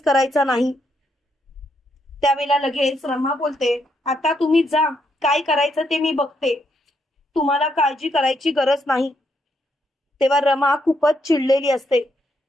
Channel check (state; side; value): normal; both; correlation 0.77